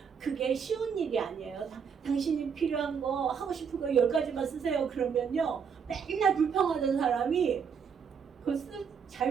그게 쉬운 일이 아니에요. 당신이 필요한 거, 하고 싶은 거 10가지만 쓰세요. 그러면요, 맨날 불평하던 사람이 잘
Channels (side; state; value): left; quieter; 6.6 dB